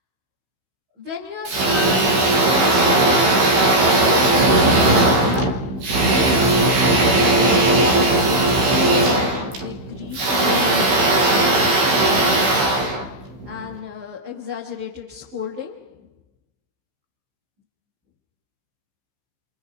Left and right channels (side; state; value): left; late; 15 ms